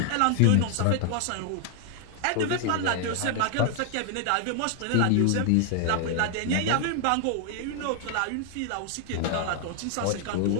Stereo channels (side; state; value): both; different; correlation 0.00